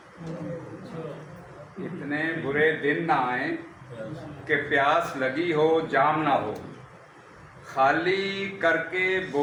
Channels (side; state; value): both; identical; correlation 1.00